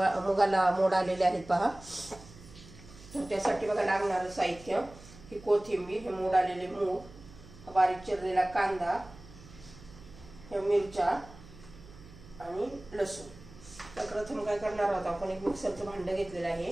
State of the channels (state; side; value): noise; right; hum, 19 dB below the sound